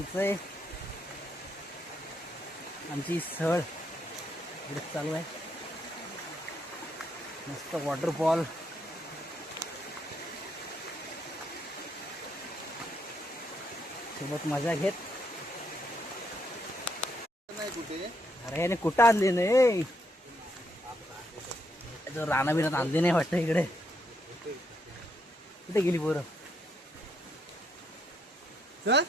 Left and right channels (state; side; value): normal; both; correlation 0.76